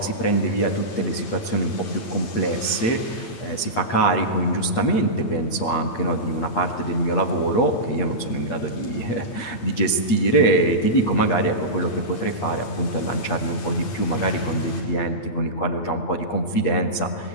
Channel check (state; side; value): late; right; 8.5 ms